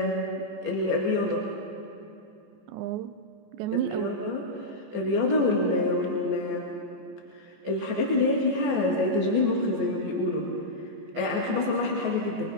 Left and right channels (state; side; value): late; left; 14 ms